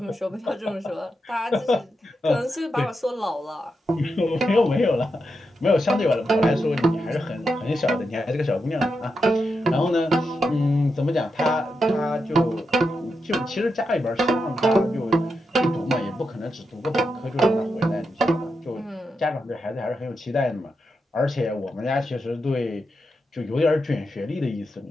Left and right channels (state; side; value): normal; both; correlation 0.86